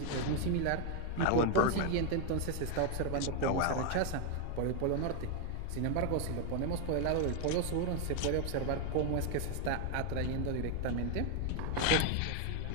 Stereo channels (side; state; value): both; different; correlation 0.00